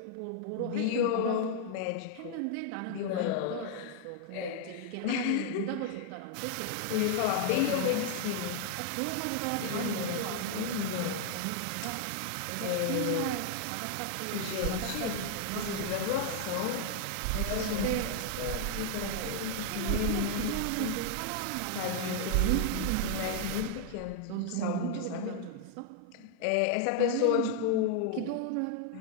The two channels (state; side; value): different; both; correlation 0.00